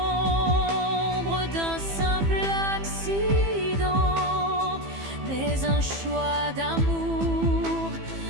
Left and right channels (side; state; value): left; late; 15 ms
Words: d'un simple accident, mais un choix d'amour,